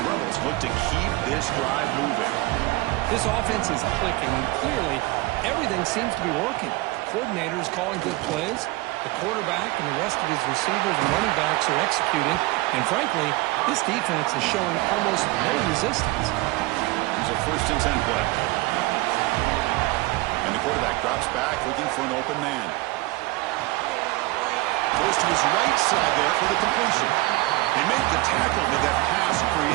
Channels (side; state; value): left; quieter; 21.6 dB